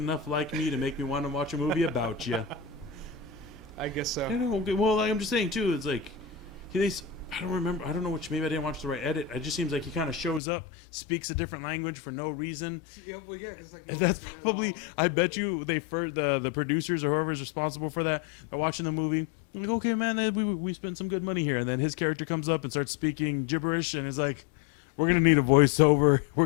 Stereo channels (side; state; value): right; drops out; at 10.4 s